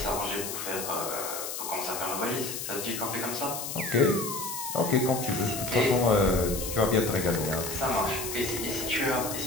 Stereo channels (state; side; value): noise; left; hiss, 6 dB below the sound